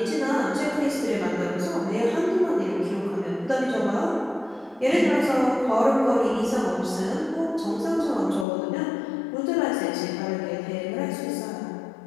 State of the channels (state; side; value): drops out; right; at 8.5 s